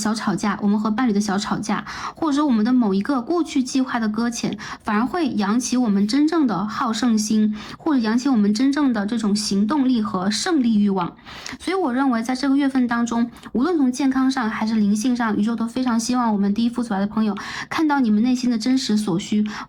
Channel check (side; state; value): both; identical; correlation 1.00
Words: 吵架，我们和伴侣的小吵架，或者说我们的某一个过去计划的搁浅，反而会扬起我们真正的好胜心，或者扬起我们真正的这种行动力和胜利欲望。所以我认为在这个月份当中，无论从健康上还是灵性上，宇宙都非常希望我们第一副组来的朋友看到你们内心的真实所需，